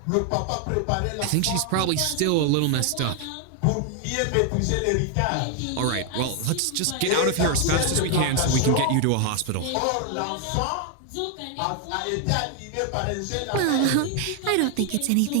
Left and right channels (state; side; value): different; both; correlation 0.00